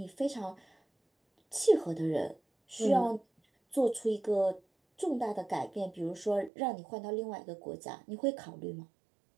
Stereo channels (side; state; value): left; drops out; at 6.5 s